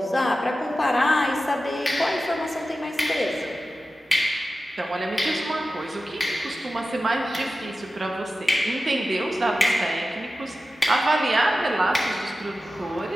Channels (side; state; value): both; normal; correlation 0.94